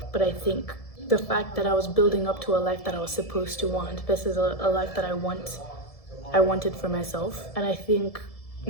But I think the fact that I was building up to a life that I was supposed to want, this is a life that I wanted for myself. And I think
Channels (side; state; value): right; late; 1.7 ms